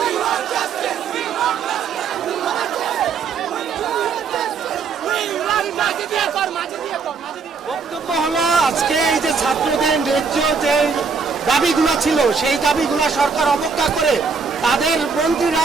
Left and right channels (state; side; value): quieter; left; 5.3 dB